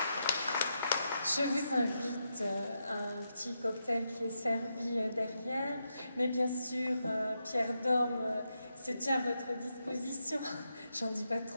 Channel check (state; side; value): inverted; both; correlation -0.84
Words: Je vous invite à un petit cocktail qui est servi derrière, mais bien sûr, Pierre Dorme se tient à votre disposition, j'en dis pas